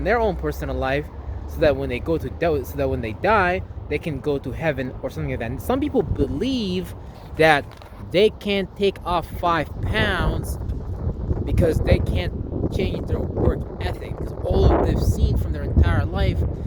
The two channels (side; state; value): both; identical; correlation 1.00